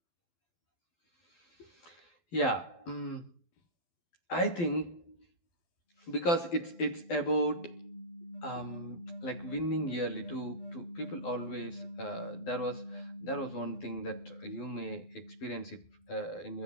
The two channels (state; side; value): late; right; 12 ms